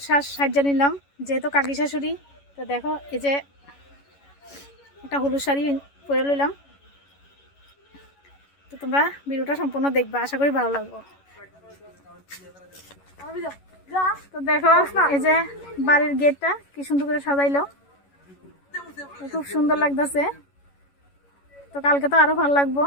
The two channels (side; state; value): right; late; 11 ms